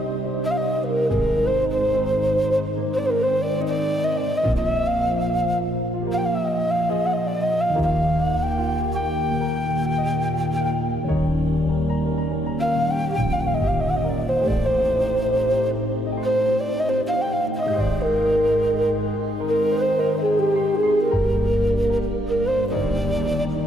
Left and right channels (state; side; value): normal; both; correlation 0.74